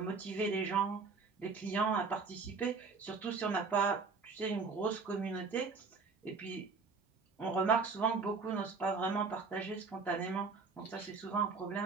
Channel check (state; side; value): quieter; left; 4.6 dB